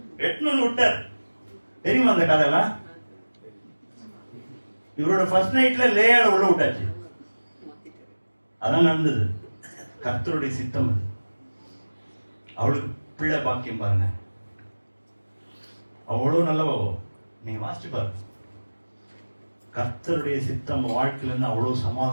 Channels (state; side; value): inverted; both; correlation -1.00